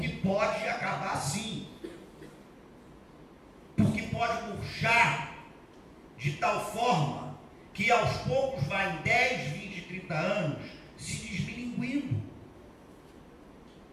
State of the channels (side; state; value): both; identical; correlation 1.00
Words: pode acabar sim. Porque pode murchar de tal forma que aos poucos vai em 10, 20, 30 anos se desmilinguindo.